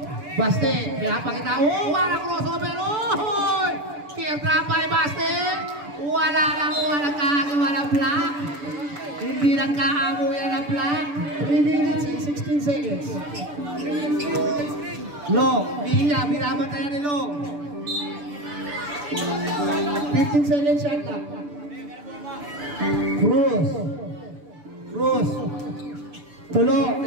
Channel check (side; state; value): left; late; 6.9 ms